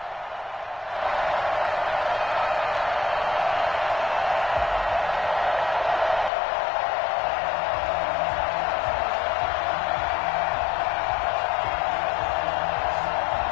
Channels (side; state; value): right; drops out; at 6.3 s